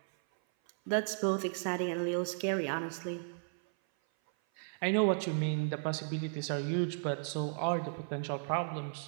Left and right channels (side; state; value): left; silent; 55 dB below the other